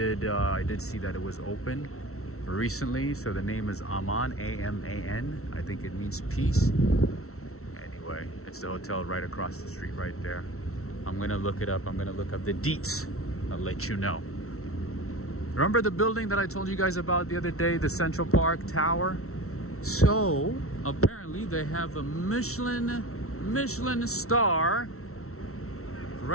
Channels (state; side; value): late; right; 0.63 ms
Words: see that it was open recently. So the name is Aman, A-M-A-N. I think it means peace. Anyway, it's the hotel right across the street right there. I'm gonna look it up. I'm gonna look up the deets. I'll let you know. Remember the building that I told you guys about the other day, the Central Park Tower? So apparently they have a Michelin star